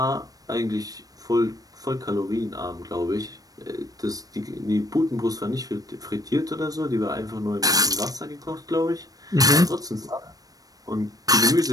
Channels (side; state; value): left; late; 0.18 ms